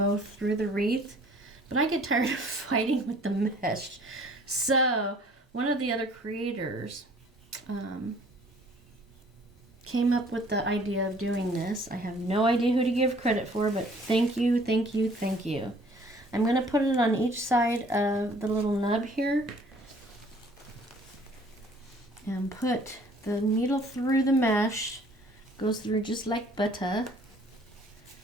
through the wreath, but I get tired of fighting with the mesh. So one of the other creators came up with the idea of doing this. I have no idea who to give credit for, but thank you, thank you, thank you. I'm going to put it on each side of the little nub here and put the needle through the mesh. Goes through just like butter.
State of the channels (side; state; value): both; normal; correlation 0.56